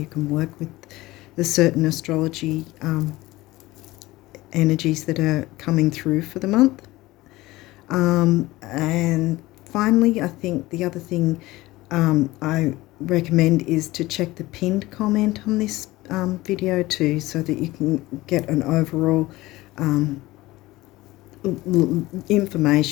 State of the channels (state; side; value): quieter; right; 18.8 dB